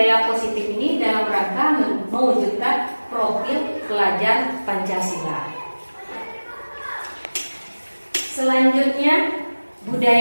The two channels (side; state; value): both; inverted; correlation -1.00